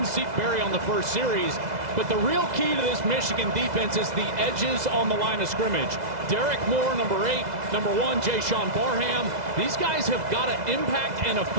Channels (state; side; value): late; left; 2.0 ms